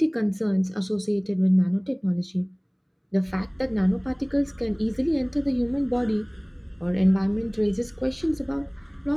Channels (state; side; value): identical; both; correlation 1.00